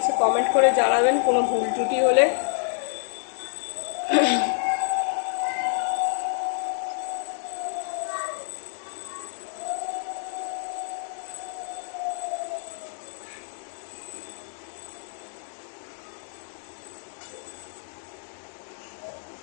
কমেন্ট করে জানাবেন কোনো ভুল ত্রুটি হলে।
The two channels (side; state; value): right; silent; 59 dB below the other